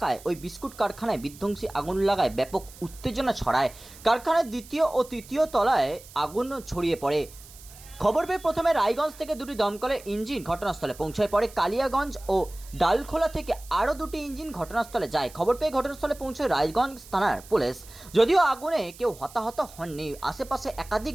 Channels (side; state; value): right; noise; hiss, 20 dB below the sound